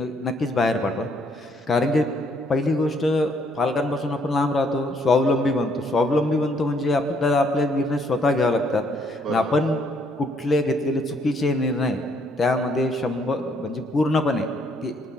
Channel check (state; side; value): normal; both; correlation 0.68